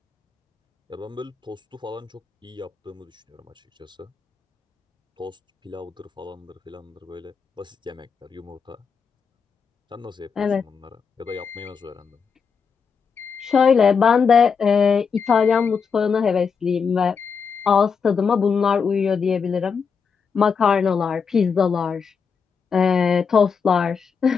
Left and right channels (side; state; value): right; quieter; 6.0 dB